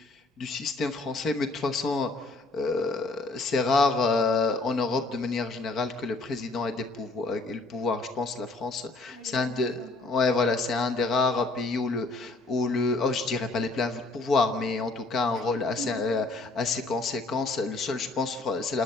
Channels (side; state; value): right; quieter; 3.3 dB